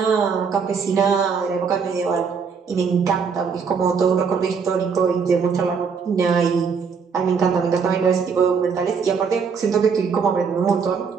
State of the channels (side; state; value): left; quieter; 5.9 dB